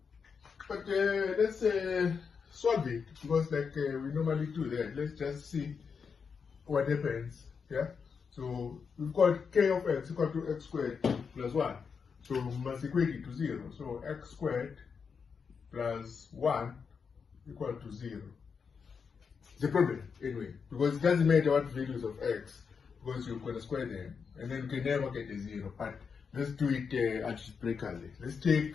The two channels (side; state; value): right; quieter; 5.9 dB